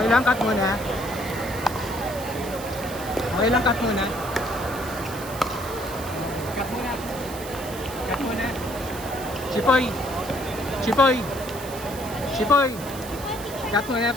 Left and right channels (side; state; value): right; noise; hiss, 13 dB below the sound